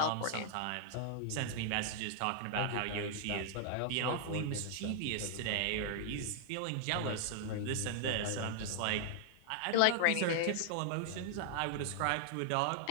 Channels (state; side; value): different; both; correlation 0.00